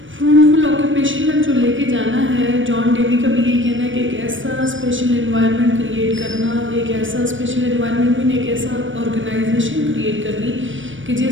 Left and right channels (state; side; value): late; left; 0.56 ms